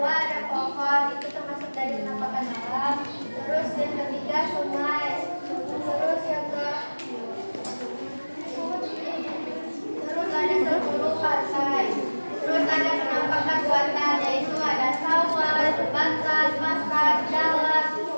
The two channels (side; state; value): both; inverted; correlation -1.00